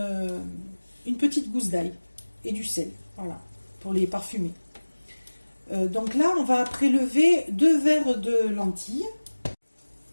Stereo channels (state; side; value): inverted; both; correlation -1.00